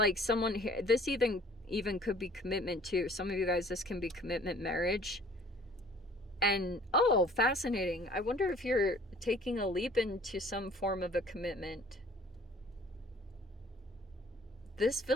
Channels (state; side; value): normal; both; correlation 0.53